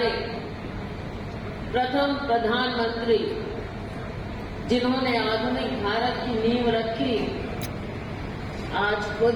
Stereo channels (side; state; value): both; identical; correlation 1.00